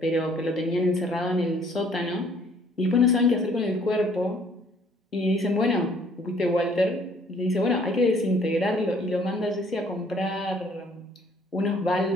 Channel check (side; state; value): both; normal; correlation 0.60